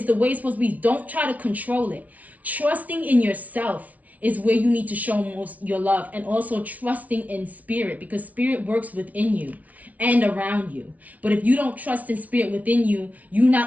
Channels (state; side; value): late; left; 0.071 ms